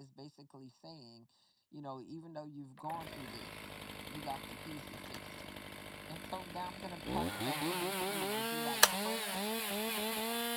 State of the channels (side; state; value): both; identical; correlation 1.00